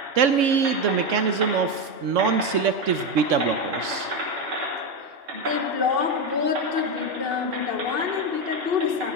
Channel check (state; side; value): late; left; 3.6 ms